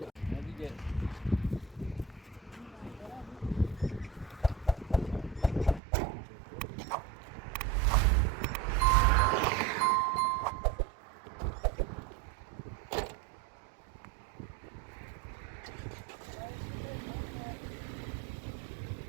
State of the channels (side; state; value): left; drops out; at 5.8 s